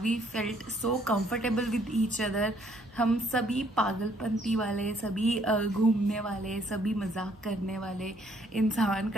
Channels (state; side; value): normal; both; correlation 0.66